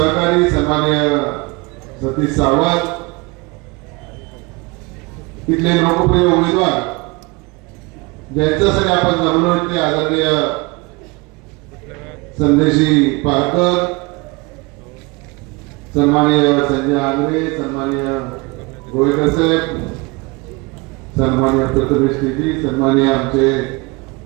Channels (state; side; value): quieter; left; 25.9 dB